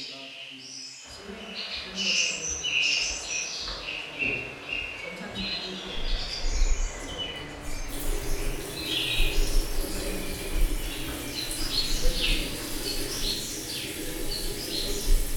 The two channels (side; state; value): both; identical; correlation 1.00